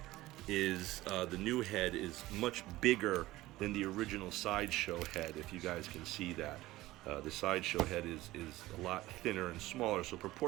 is, the new head is much bigger than the original SideShow head, if you guys can see that. The SideShow head is a lot thinner and smaller, so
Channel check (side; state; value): left; quieter; 17.4 dB